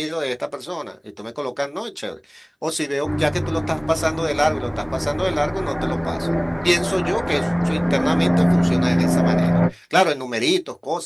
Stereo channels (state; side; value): identical; both; correlation 1.00